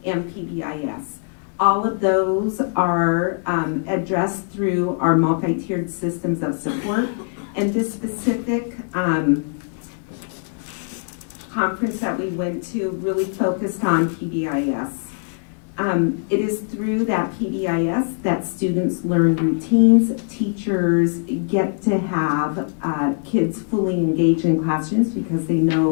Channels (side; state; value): right; silent; 64 dB below the other